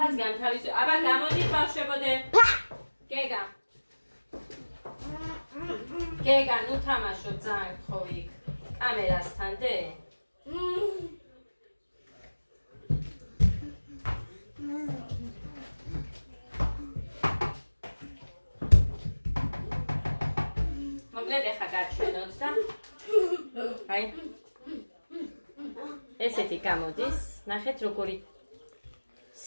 განთავისო. აბა გამოდით ბავშვებოდე. გეგა. გეგა, ნუ თამაშობ ძალიან გთხოვი იქ. კამერასთან დე. მოკლედ ეხა გაჩვენოთ და აი ესეთი გამოდის. ნახეთ როგორი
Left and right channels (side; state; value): both; inverted; correlation -1.00